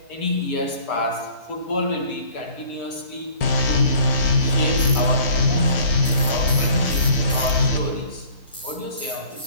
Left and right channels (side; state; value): both; inverted; correlation -0.52